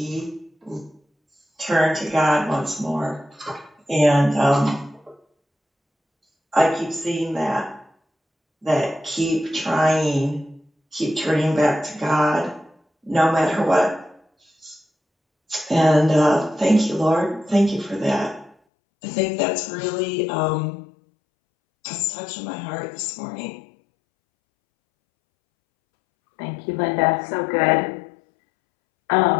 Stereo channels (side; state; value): right; drops out; at 18.6 s